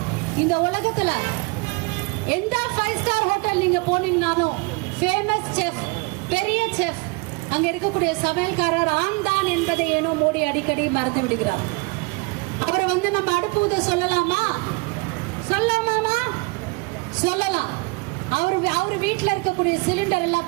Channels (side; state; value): left; quieter; 28.4 dB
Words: இந்த உலகத்துல எந்த 5 ஸ்டார் ஹோட்டல் நீங்க போனீங்கனாலும் ஃபேமஸ் செஃப், பெரிய செஃப், அங்க இருக்கக்கூடிய சமையல்காரர் ஆண் தான் என்பதை ஏனோ மோடி அடிக்கடி மறந்து விடுகிறார். அவரை வந்து நம்ம அடுப்பு ஊத சொல்லலாமா? சொல்லலாமா? சொல்லலாம். அவர் வீட்டுல இருக்கக்கூடிய சிலிண்டர் எல்லாம்